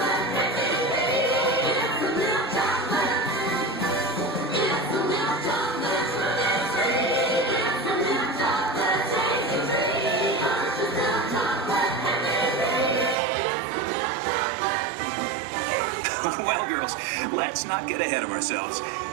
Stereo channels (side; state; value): left; drops out; at 13.2 s